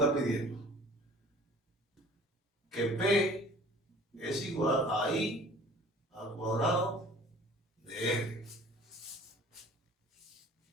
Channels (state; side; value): normal; both; correlation 0.49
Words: pidiendo. Que P es igual a I al cuadrado de R.